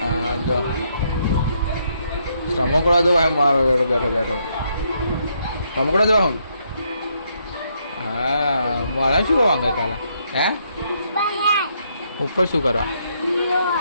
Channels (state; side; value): inverted; both; correlation -0.75